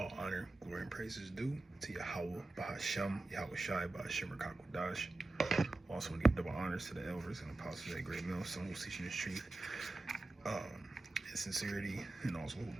honor, glory, and praises due to Yahweh, Bahasham, Yahweh Shai, Bahashim, Rakakwadash. Also want to give double honors to the elders and apostles at Great Mill, some who's teaching this truth, and sincerity, and also who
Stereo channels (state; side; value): quieter; left; 3.0 dB